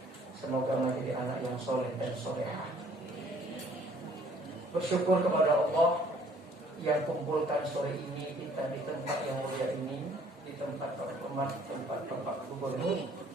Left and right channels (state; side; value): normal; both; correlation 0.59